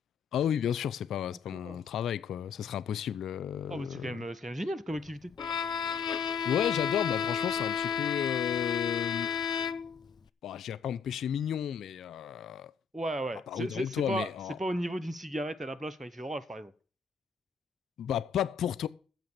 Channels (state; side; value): quieter; right; 6.1 dB